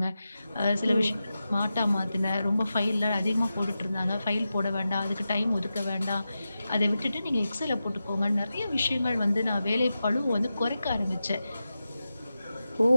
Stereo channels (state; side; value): inverted; both; correlation -0.92